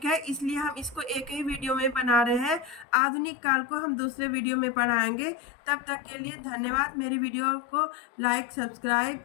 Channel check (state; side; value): drops out; right; at 2.9 s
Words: है, इसलिए हम इसको एक ही वीडियो में बना रहे हैं। आधुनिक काल को हम दूसरे वीडियो में पढ़ाएंगे। तब तक के लिए धन्यवाद। मेरी वीडियो को लाइक, सब्सक्राइब